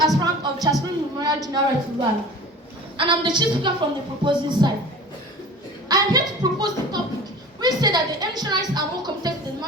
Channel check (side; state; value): both; normal; correlation 0.39